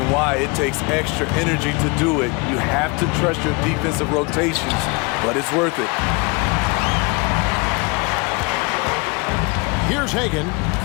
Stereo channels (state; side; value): quieter; right; 28.9 dB